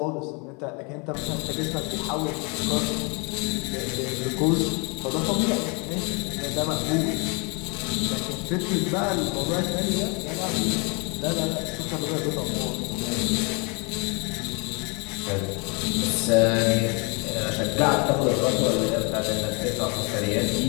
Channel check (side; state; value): right; quieter; 32.3 dB